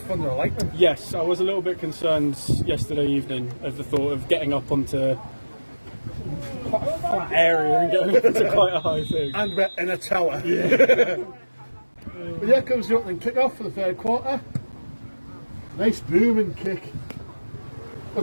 or lightning. Yes, I was a little bit concerned yesterday evening of the thought of getting up onto quite a flat area and getting up into quite a high thing. And we're in a tower. Yeah. But here comes the opening kick-off for the third quarter. Nice booming kick.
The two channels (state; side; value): inverted; both; correlation -1.00